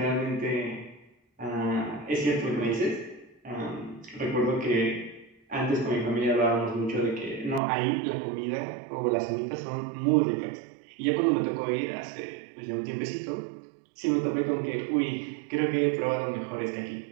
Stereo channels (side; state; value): left; drops out; at 7.6 s